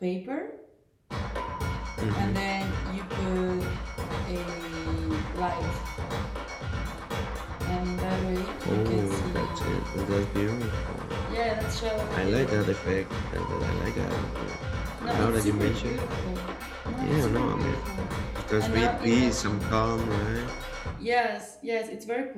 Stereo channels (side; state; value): both; identical; correlation 1.00